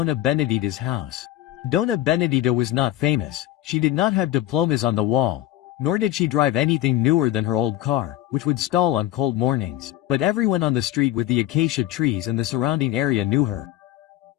Benedita's house. Dona Benedita was not famous, she did not have diplomas on the wall, nor did she drive anything newer than her old car, which would stall on cold mornings, but everyone on the street with the acacia trees and the surrounding area knew her.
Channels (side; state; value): right; quieter; 13.9 dB